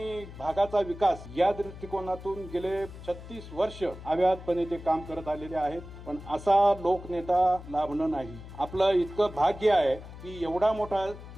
भागाचा विकास या दृष्टिकोनातून गेले 36 वर्ष अव्याहतपणे ते काम करत आलेले आहेत. पण असा लोकनेता लाभणं नाही. आपलं इतकं भाग्य आहे की एवढा मोठा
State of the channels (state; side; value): noise; left; hum, 14 dB below the sound